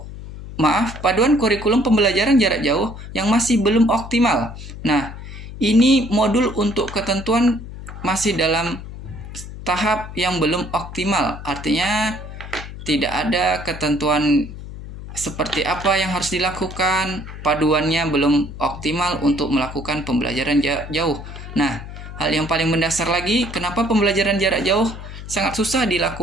jarak jauh yang masih belum optimal. Nah, ini modul untuk ketentuan masih dalam tahap yang belum optimal. Artinya tidak ada ketentuan seperti apa yang harus dilakukan, paduannya belum optimal untuk melakukan pembelajaran jarak jauh. Nah, hal yang paling mendasar lagi, kenapa pembelajaran jarak jauh sangat susah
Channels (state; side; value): noise; left; hum, 12 dB below the sound